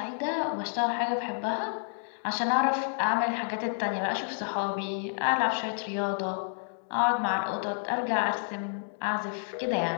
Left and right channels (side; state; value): right; silent; digital silence